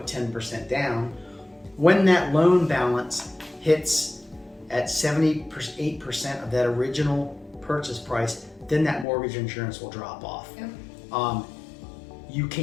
10% down, when that loan balance hits at 78% of that original purchase price, then that mortgage insurance will drop off. Yep. You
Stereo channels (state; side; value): drops out; right; at 9.1 s